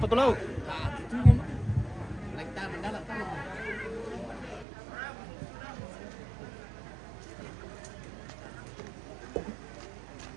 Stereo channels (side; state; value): left; drops out; at 4.7 s